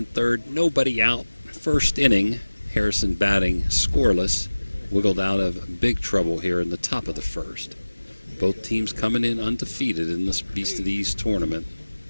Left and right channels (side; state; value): both; inverted; correlation -1.00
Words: third, nobody out. First inning, Harrison batting scoreless, wiggled out of big trouble here in the top of the first. Both teams coming in undefeated in this Beast of the East tournament.